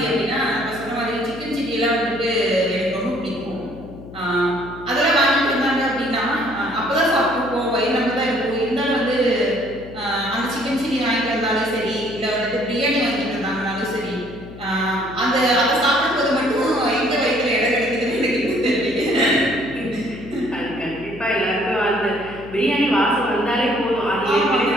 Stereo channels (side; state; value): left; noise; hum, 15 dB below the sound